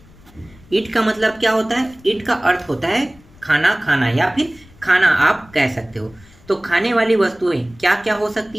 ईट का मतलब क्या होता है? ईट का अर्थ होता है खाना, खाना या फिर खाना आप कह सकते हो। तो खाने वाली वस्तुएं क्या क्या हो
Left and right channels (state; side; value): noise; left; rumble, 25 dB below the sound